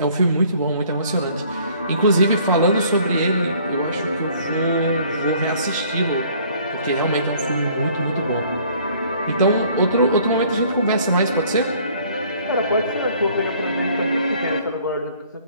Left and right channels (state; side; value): inverted; both; correlation -0.57